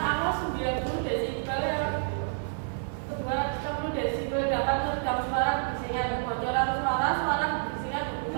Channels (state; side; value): silent; left; digital silence